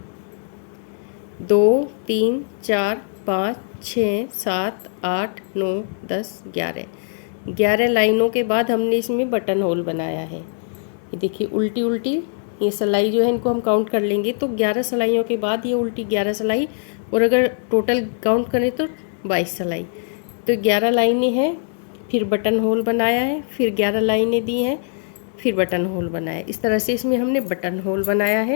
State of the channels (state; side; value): silent; right; digital silence